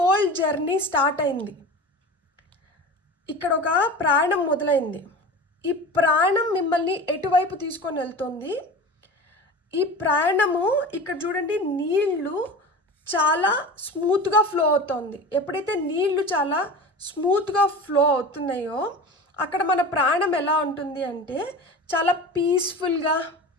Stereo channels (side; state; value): both; normal; correlation 0.33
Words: జర్నీ స్టార్ట్ అయింది. ఇక్కడ ఒక ప్రయాణం మొదలైంది. ఈ ప్రయాణం మిమ్మల్ని ఎటువైపు తీసుకొని వెళ్తుంది? ఈ ప్రయాణము ఇక్కడ చూడండి, నీళ్లు చాలా స్మూత్గా ఫ్లో అవుతుంది. ఎప్పుడైతే నీళ్లు చాలా స్మూత్గా ఫ్లో అవుతున్నాయో అక్కడ మన ప్రాణం ఎలా ఉంటుంది అంటే చాలా పీస్ఫుల్గా,